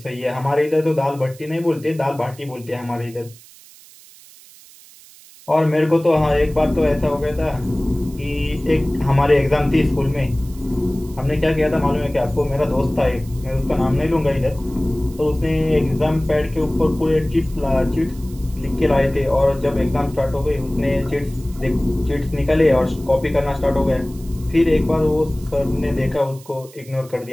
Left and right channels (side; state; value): right; noise; hiss, 23 dB below the sound